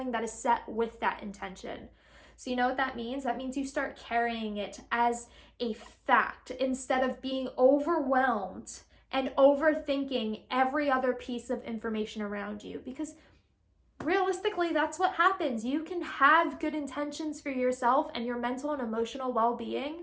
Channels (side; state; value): both; identical; correlation 1.00